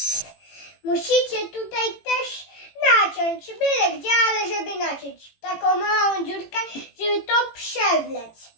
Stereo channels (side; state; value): right; late; 18 ms